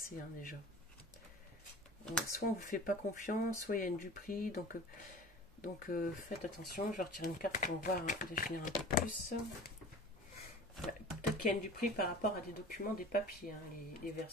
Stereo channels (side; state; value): both; normal; correlation 0.40